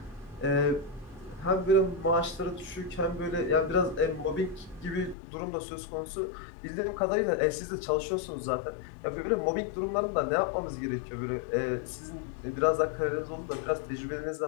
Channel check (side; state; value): right; drops out; at 5.2 s